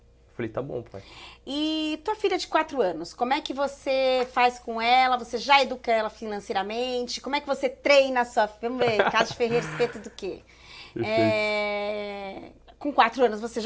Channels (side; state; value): both; identical; correlation 1.00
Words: falei, tá bom, pai. E tua filha de 4 anos, como é que você faz com ela? Você já educa ela financeiramente? Como é que você treina a sua filha? Vamos ver, Casa de Ferreira, respeito do quê? Com 4 anos você